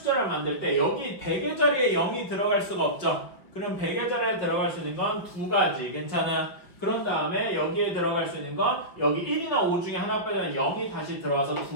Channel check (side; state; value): right; late; 5.3 ms